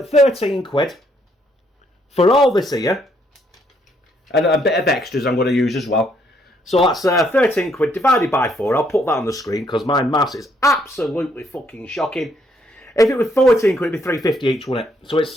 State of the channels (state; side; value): normal; both; correlation 0.71